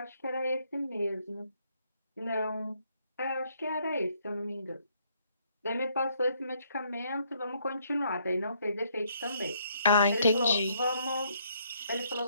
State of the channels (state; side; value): inverted; both; correlation -0.69